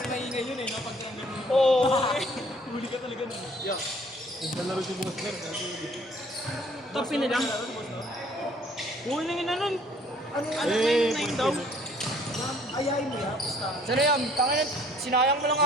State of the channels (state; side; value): normal; both; correlation 0.58